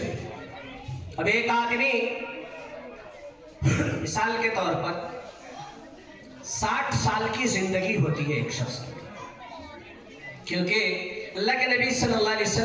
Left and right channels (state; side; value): identical; both; correlation 1.00